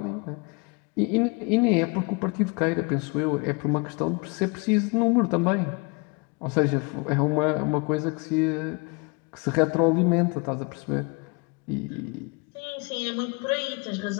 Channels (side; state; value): right; quieter; 30.7 dB